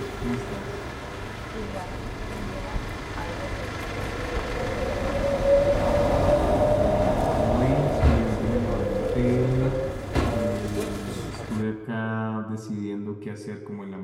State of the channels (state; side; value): identical; both; correlation 1.00